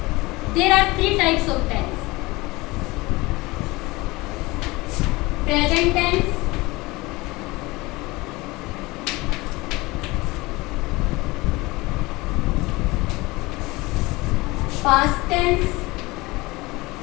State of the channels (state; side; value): quieter; right; 22.2 dB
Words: there are three types of tense: present tense, past tense,